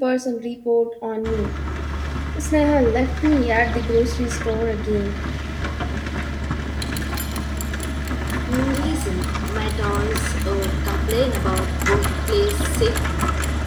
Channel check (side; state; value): both; identical; correlation 1.00